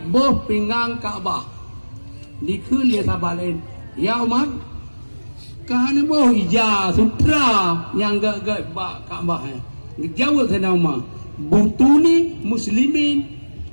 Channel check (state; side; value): inverted; both; correlation -1.00